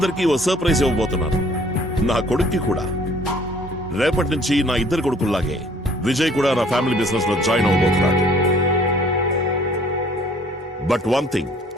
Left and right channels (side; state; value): both; normal; correlation 0.57